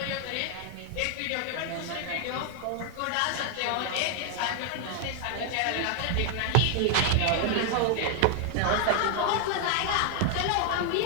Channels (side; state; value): both; different; correlation 0.00